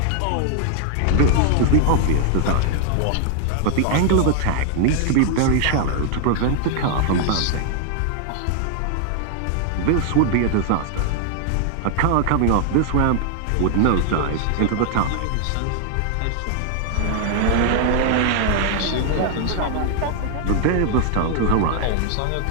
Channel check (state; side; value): different; both; correlation 0.00